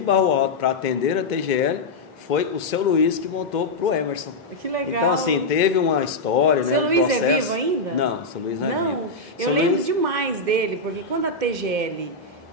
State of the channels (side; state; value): right; quieter; 3.1 dB